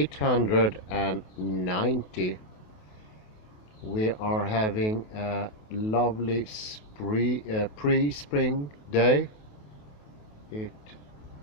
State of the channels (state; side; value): late; right; 28 ms